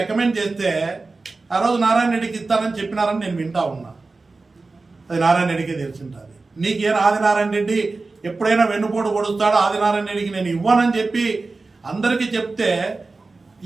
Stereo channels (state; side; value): quieter; left; 3.7 dB